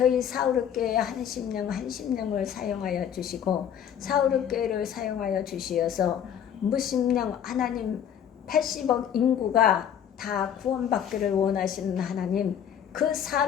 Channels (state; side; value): quieter; right; 9.1 dB